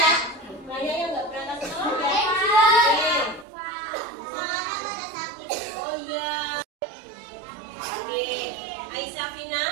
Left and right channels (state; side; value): drops out; left; at 3.5 s